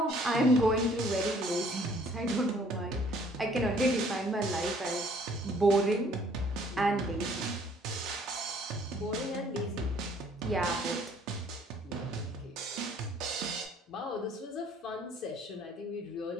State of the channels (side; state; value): both; normal; correlation 0.59